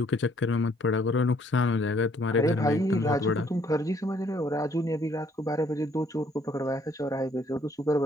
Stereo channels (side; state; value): both; normal; correlation 0.65